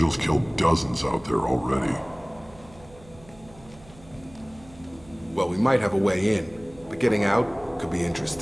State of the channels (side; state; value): right; noise; hum, 22 dB below the sound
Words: killed dozens out there already. Well, we might have a way in, but getting out could be